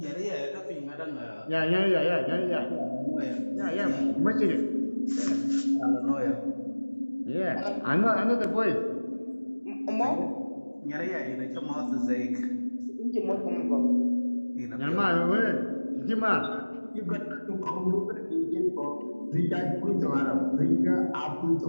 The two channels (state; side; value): inverted; both; correlation -1.00